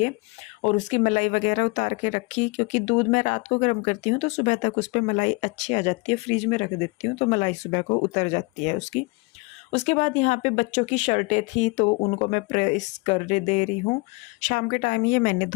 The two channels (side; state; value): right; quieter; 27.0 dB